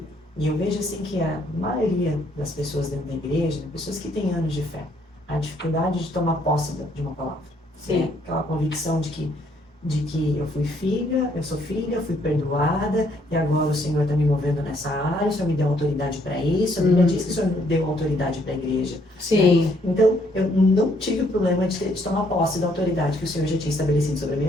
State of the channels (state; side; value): normal; both; correlation 0.68